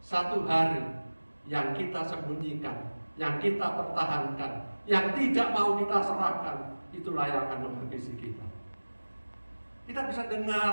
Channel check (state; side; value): inverted; both; correlation -1.00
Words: hari yang kita sembunyikan, yang kita pertahankan, yang tidak mau kita serahkan, itulah yang akan menghabisi kita. Kita bisa